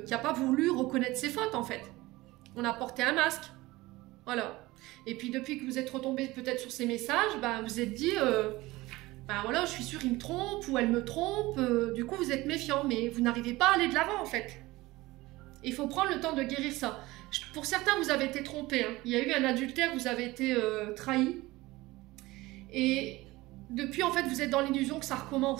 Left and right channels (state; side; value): quieter; left; 19.8 dB